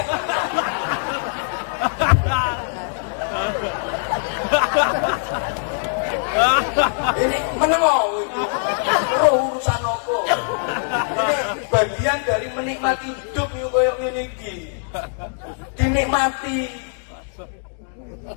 Ini menengok itu urusan apa? Ini bagian dari menikmati hidup yuk koyok ngene iki. Dinikmati.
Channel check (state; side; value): silent; right; digital silence